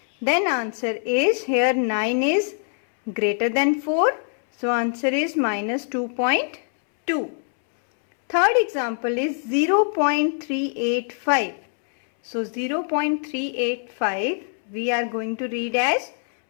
Then answer is here 9 is greater than 4. So answer is minus 2.2. Third example is 0.385. So 0.385 we are going to read as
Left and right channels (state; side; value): silent; right; 63 dB below the other